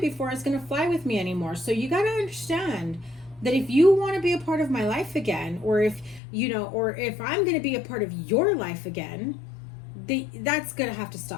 is going to fly with me anymore. So you got to understand that if you want to be a part of my life again, or if, you know, or if I'm going to be a part of your life again, that's gonna have to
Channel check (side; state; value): right; drops out; at 6.2 s